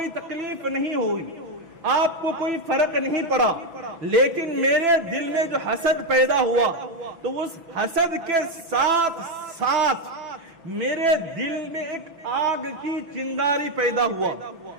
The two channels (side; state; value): left; late; 6.0 ms